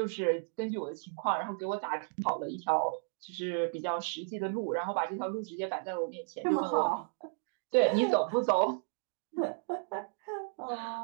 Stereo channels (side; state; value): left; silent; digital silence